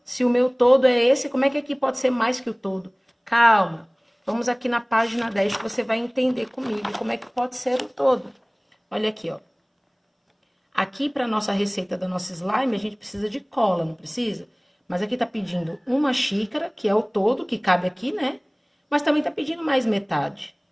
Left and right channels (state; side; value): identical; both; correlation 1.00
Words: Se o meu todo é esse, como é que aqui pode ser mais que o todo? Calma, vamos aqui na página 10 que você vai entender comigo como é que pode ser o todo. Olha aqui, ó. Aqui, para a nossa receita da nossa slime, a gente precisa de cola, não precisa? Mas aqui tá pedindo uma xícara, que é o todo, que cabe aqui, né? Mas também tá pedindo mais metade,